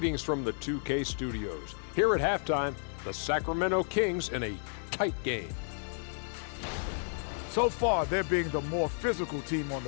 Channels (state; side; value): silent; right; 56 dB below the other